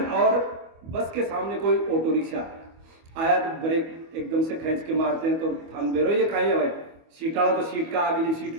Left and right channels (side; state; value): left; late; 25 ms